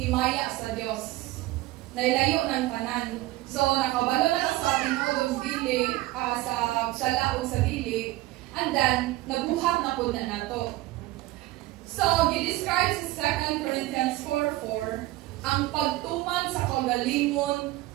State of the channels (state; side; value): quieter; left; 17.8 dB